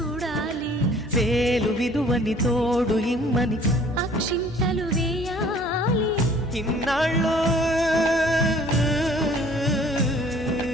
వేలు విలువని తోడు ఇమ్మని అక్షింతలు వేయాలి. ఇన్నాళ్ళు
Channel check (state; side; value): normal; both; correlation 0.54